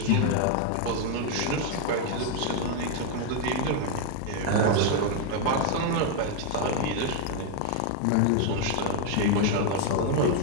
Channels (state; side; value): different; both; correlation 0.01